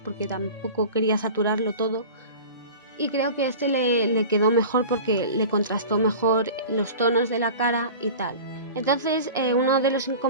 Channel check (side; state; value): both; inverted; correlation -0.37